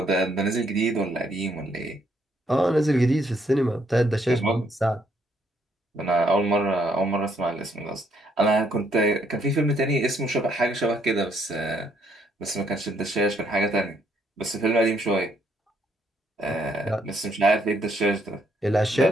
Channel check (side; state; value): both; normal; correlation 0.71